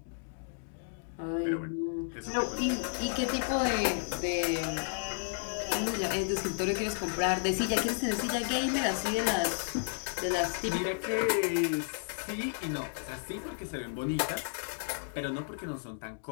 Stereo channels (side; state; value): right; silent; digital silence